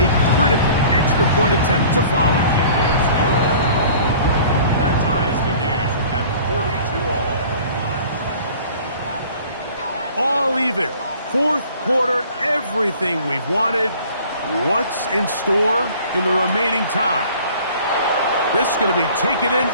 critical extra point attempt to follow. It's good. That ties the game at 42 all. All even. Fourth quarter, everything we've wanted. What's in store in the remaining time? This is going to be taken in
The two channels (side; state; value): both; inverted; correlation -0.48